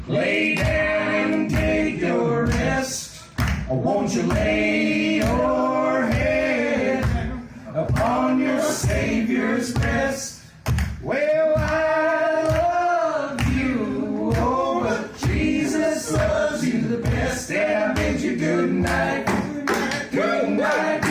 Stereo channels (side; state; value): both; identical; correlation 1.00